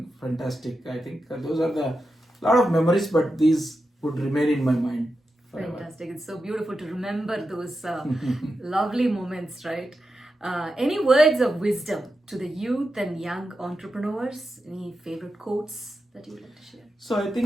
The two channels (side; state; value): both; normal; correlation 0.89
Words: Fantastic. I think those are the lot of memories, but these would remain in my mind forever. Fantastic. It's so beautiful to remember those lovely moments, right? Any words of wisdom to the youth and young entrepreneurs? Any favorite quotes that you would like to share? So I